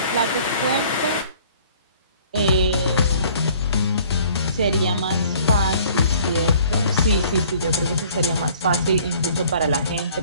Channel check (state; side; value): inverted; both; correlation -0.55